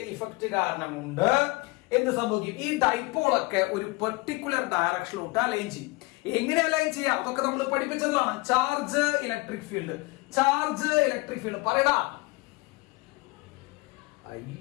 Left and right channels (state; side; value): quieter; right; 24.2 dB